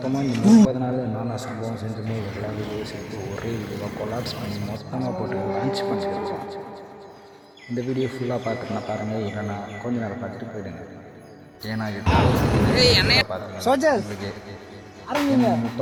இந்த 30 நாள் என்னென்ன சம்பவம் செஞ்சுமே எல்லா வீடியோ சேர்த்து ஒரே வீடியோவாக கொலாப்ஸ் பண்ணி மொத்தமாக போட்டு லான்ச் பண்ணியிருக்கோம். இந்த வீடியோ ஃபுல்லாக பார்த்துட்டுனா பாருங்கள், இல்லைன்னா கொஞ்ச நேரம் பார்த்துட்டு போயிடுங்க. ஏன்னா இது பார்த்துக்கலாம்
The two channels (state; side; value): identical; both; correlation 1.00